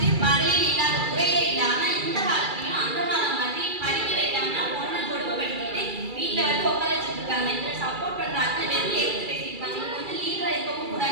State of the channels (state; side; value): late; left; 2.3 ms